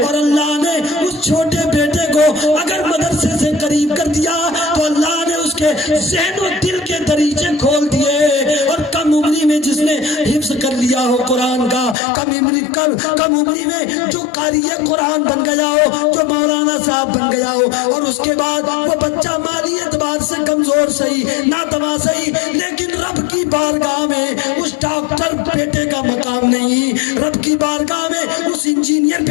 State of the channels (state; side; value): drops out; right; at 12.0 s